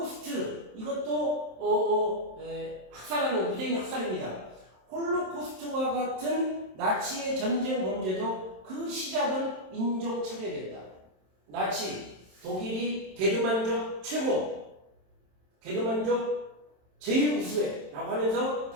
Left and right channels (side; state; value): left; late; 27 ms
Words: 이것도 학살하는 유대인 학살입니다. 홀로코스트와 같은 나치의 전쟁 범죄도 그 시작은 인종차별이었다. 나치, 독일이 게르만족 최고, 게르만족 제일 우수해 라고 하면서